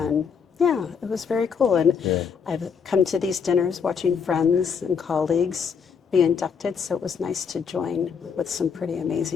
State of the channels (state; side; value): quieter; right; 6.4 dB